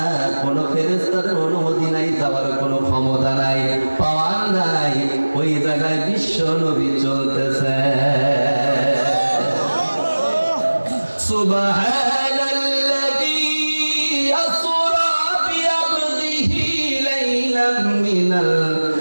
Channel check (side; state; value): both; inverted; correlation -1.00